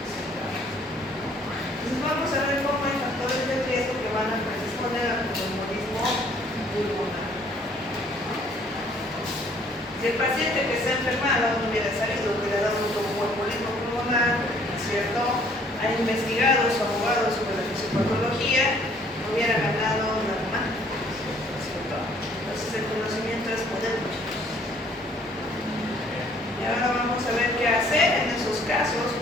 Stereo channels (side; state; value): both; normal; correlation 0.60